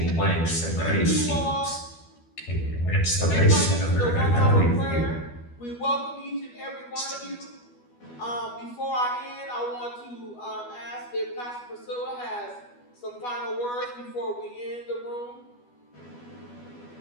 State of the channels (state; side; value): late; right; 12 ms